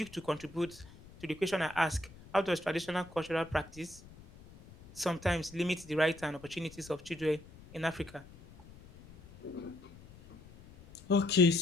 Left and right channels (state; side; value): noise; left; rumble, 20 dB below the sound